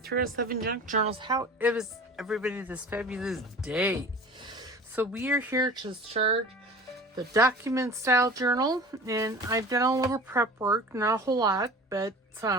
307 Junk Journals. How is everybody this fabulous day? So we are here to start the document style journal, and I've done a little prep work, not a whole lot, but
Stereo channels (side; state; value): both; normal; correlation 0.40